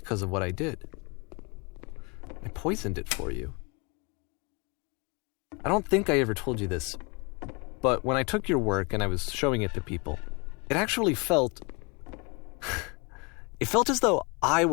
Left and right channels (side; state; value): right; quieter; 30.2 dB